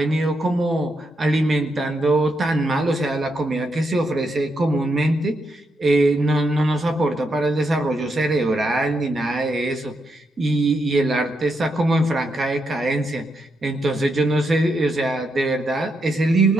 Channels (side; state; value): both; normal; correlation 0.81